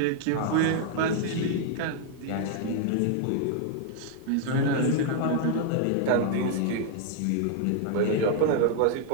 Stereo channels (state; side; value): different; both; correlation 0.00